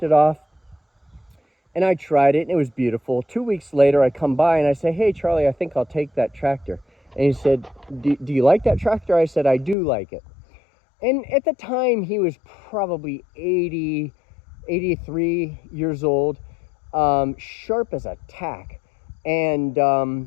it off, and I tried it, and it was beautiful. 2 weeks later, I come by, and I say, hey, Charlie, I think I'll take that tractor. And he said, do you like that tractor? I said, I do like it. And at the time, he was probably 80, 83 years old, sharp as a tack. And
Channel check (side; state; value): right; drops out; at 9.8 s